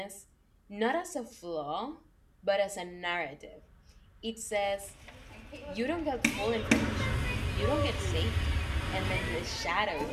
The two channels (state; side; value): identical; both; correlation 1.00